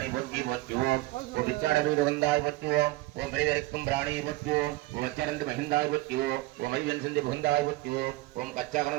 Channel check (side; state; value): left; quieter; 19.6 dB